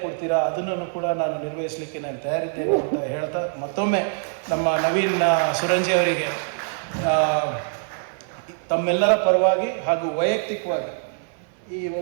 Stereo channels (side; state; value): left; silent; 56 dB below the other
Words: ಕೊಡ್ತೀರಾ ಅದನ್ನು ಕೂಡ ನಾನು ನಿರ್ವಹಿಸಲಿಕ್ಕೆ ನಾನು ತಯಾರಿದ್ದೇನೆ ಅಂತ ಹೇಳ್ತಾ, ಮತ್ತೊಮ್ಮೆ ನಮ್ಮ ನವೀನ್ ಸುರಂಜಿ ಅವರಿಗೆ ತಮ್ಮೆಲ್ಲರ ಪರವಾಗಿ ಹಾಗೂ ವೈಯಕ್ತಿಕವಾಗಿ ಈ